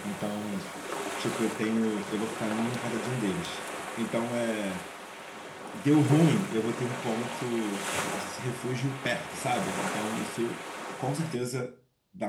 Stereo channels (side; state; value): both; identical; correlation 1.00